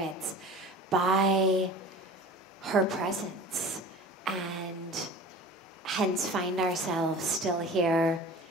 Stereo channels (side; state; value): both; normal; correlation 0.40